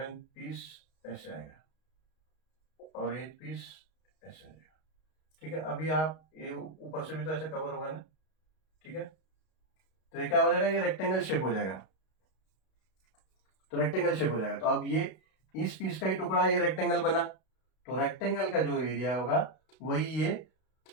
पीस ऐसे आएगा, और 8 पीस ऐसे आएगा, ठीक है। अभी आप ये ऊपर से भी तो ऐसे कवर होगा ना, ठीक है, तो ये क्या हो जाएगा, ये रेक्टेंगल शेप हो जाएगा, तो रेक्टेंगल शेप हो जाएगा। तो अब ये इस पीस का ही टुकड़ा, ये रेक्टेंगल बना, तो रेक्टेंगल का जो एरिया होगा वही ये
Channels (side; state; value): right; late; 32 ms